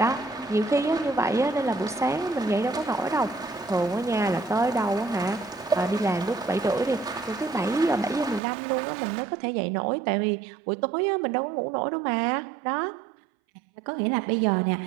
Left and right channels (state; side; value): drops out; left; at 8.4 s